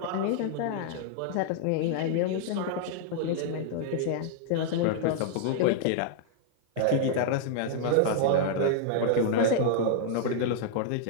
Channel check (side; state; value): both; different; correlation -0.01